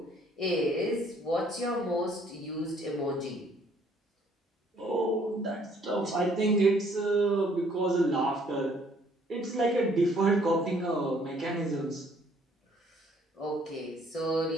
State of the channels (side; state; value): both; normal; correlation 0.62